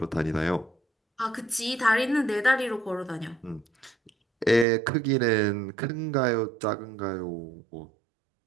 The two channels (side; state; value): left; drops out; at 4.7 s